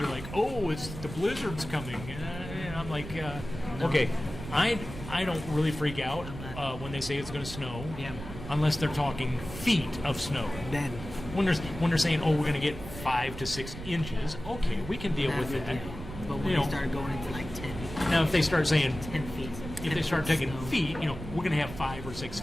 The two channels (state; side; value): noise; right; rumble, 11 dB below the sound